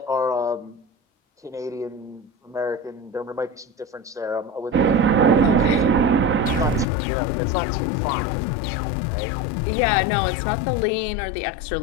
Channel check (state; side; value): drops out; right; at 6.9 s